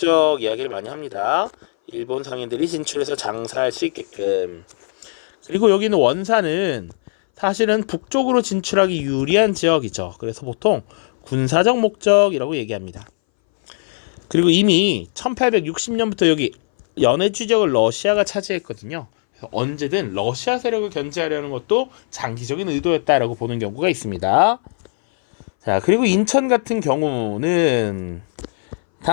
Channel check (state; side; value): silent; right; 63 dB below the other